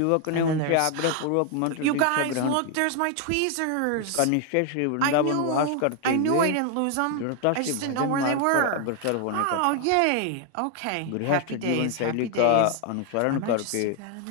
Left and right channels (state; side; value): different; both; correlation 0.01